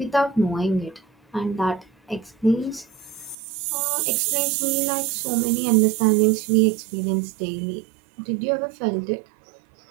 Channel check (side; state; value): left; drops out; at 3.4 s